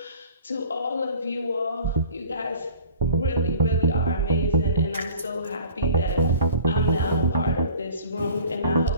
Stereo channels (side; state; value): both; inverted; correlation -0.47